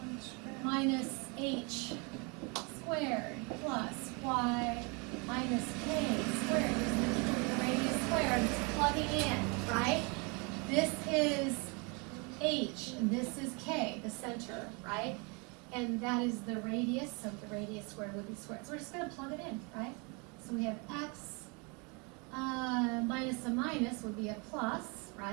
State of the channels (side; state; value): left; quieter; 31.5 dB